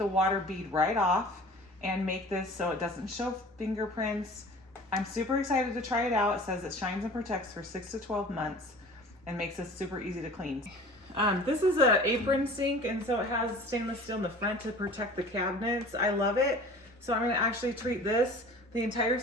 water bead right off and make this so it doesn't show fingerprints. I'm super excited to try it out. It says it shines and protects for 6 to 12 months and makes this super easy to clean. This is an apron sink, and so it has stainless steel in the front to protect the cabinets. I love it. So I'm gonna actually treat this, the entire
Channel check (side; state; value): both; normal; correlation 0.43